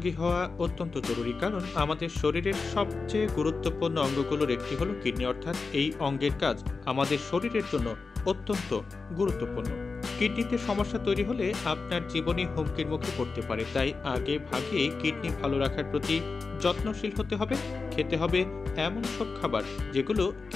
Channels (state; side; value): quieter; right; 4.3 dB